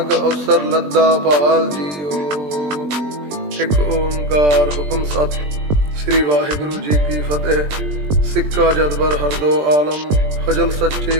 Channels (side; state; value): left; late; 20 ms